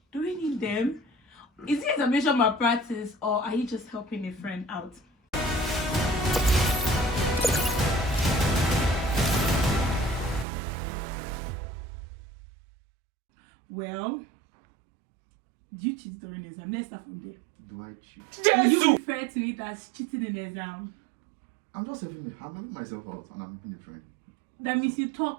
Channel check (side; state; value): left; drops out; at 10.5 s